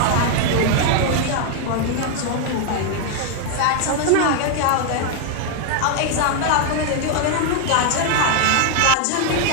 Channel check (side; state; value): both; different; correlation 0.01